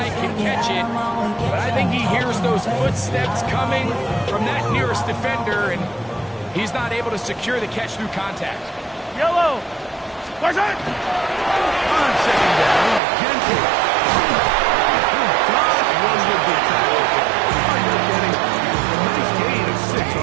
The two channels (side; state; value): left; drops out; at 13.0 s